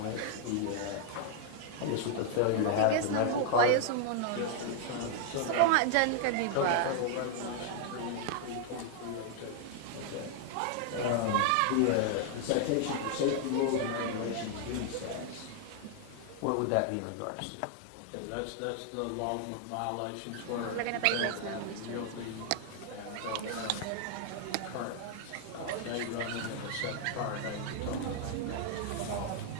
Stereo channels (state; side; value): different; both; correlation 0.00